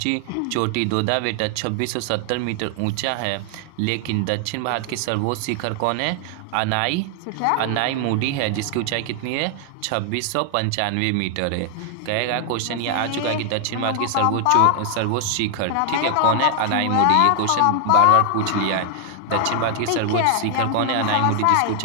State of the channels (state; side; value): different; both; correlation 0.00